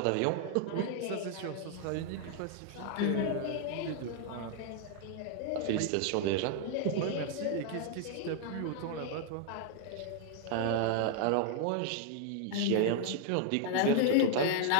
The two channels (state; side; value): different; both; correlation 0.00